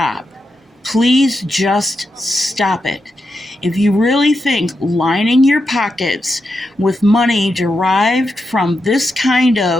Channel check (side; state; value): both; normal; correlation 0.86